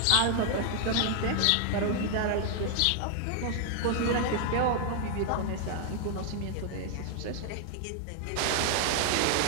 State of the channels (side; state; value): both; different; correlation 0.00